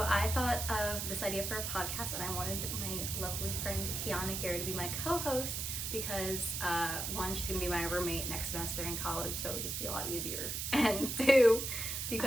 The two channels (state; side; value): noise; right; hiss, 3 dB below the sound